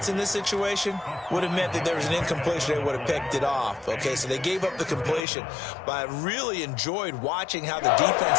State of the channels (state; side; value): drops out; right; at 5.2 s